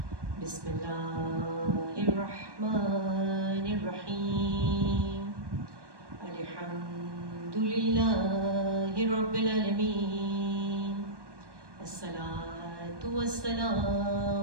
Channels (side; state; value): left; late; 1.1 ms